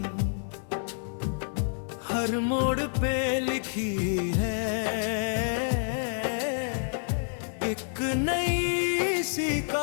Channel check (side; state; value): right; silent; digital silence